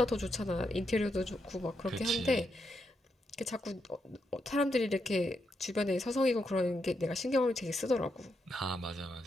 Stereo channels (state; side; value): normal; both; correlation 0.82